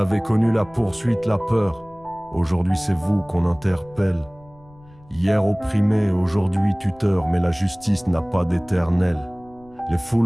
connu la poursuite, la peur. Aujourd'hui c'est vous qu'on interpelle. Hier opprimé, aujourd'hui tuteur, mais la justice n'a pas d'éternel. Les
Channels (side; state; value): left; noise; rumble, 25 dB below the sound